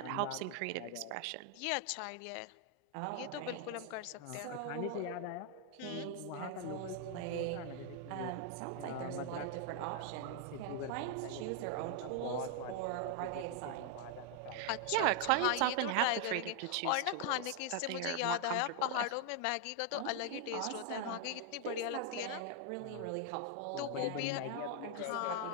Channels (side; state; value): both; different; correlation 0.00